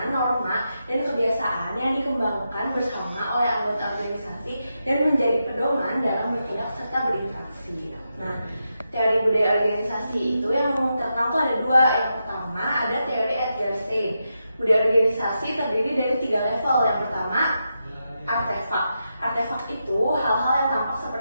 norma, dan kebiasaan yang dikembangkan bersama oleh anggota organisasi dan menjadi pedoman dalam bertindak serta berinteraksi. Nah, teori budaya organisasi itu yang terkenal tuh ada dua. Yang pertama ada teori Edgar Schein. Budaya organisasi terdiri dari 3 level. Yang pertama artefak. Artefak itu hal-hal yang tampak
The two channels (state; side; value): inverted; both; correlation -0.86